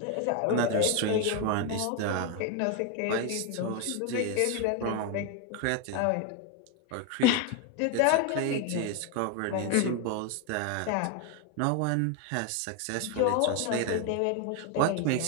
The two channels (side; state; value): both; different; correlation 0.01